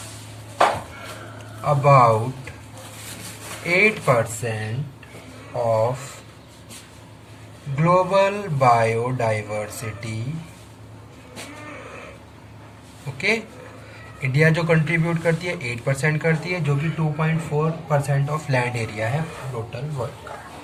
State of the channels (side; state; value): both; identical; correlation 1.00